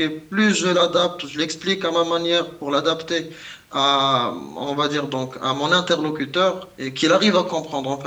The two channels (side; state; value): both; identical; correlation 1.00